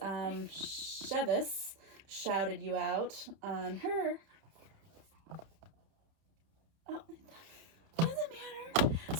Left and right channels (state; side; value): late; left; 31 ms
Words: Chevis shouted you out on her. Oh, it doesn't matter.